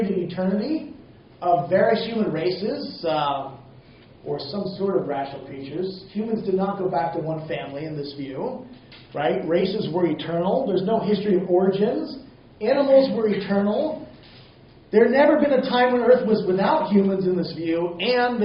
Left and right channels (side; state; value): both; identical; correlation 1.00